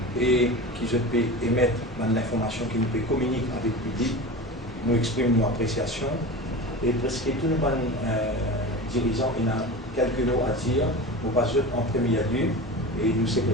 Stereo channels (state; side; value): normal; both; correlation 0.30